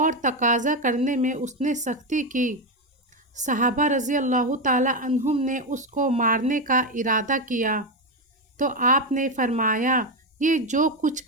تقاضا کرنے میں اس نے سختی کی۔ صحابہ رضی اللہ تعالی عنہم نے اس کو مارنے کا ارادہ کیا تو آپ نے فرمایا، یہ جو کچھ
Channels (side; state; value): both; normal; correlation 0.10